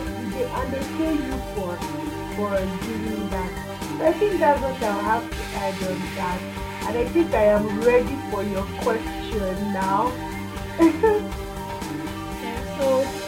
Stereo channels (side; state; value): both; identical; correlation 1.00